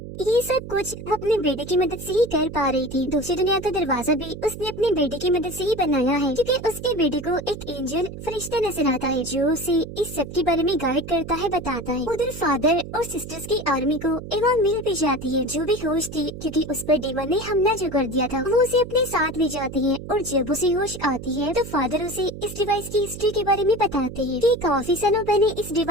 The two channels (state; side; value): noise; right; hum, 11 dB below the sound